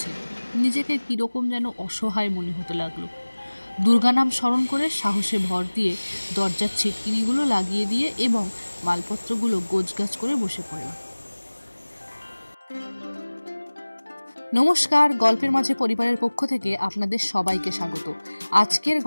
নিজেকে কিরকম যেন অসহায় মনে হতে লাগলো। দুর্গা নাম স্মরণ করে সাহসে ভর দিয়ে দরজার ছিটকিনিগুলো লাগিয়ে দিয়ে এবং মালপত্রগুলো গোছগাছ করে বসে পড়লাম। নমস্কার, গল্পের মাঝে পরিবারের পক্ষ থেকে আপনাদের সবাইকে স্বাগত। আজকের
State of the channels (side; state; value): both; inverted; correlation -1.00